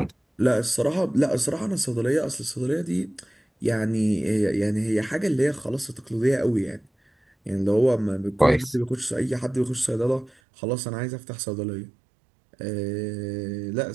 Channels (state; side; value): drops out; left; at 10.3 s